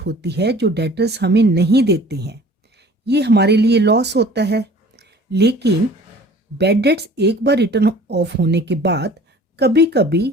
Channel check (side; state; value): both; normal; correlation 0.48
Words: है जो डेटर्स हमें नहीं देते हैं। ये हमारे लिए लॉस होता है, लेकिन बैड डेट्स एक बार रिटर्न ऑफ होने के बाद कभी कभी